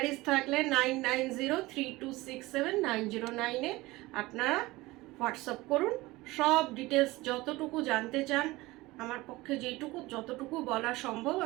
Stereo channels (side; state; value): left; quieter; 20.3 dB